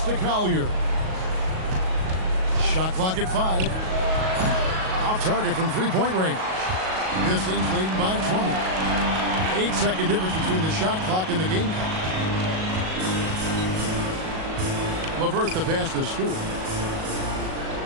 to Collier. Shot clock at 5. Off target from three-point range. Pistons leading by 20. 8-second difference between the shot clock and the game clock. LeVert the pass to Stewart.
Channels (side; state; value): left; late; 37 ms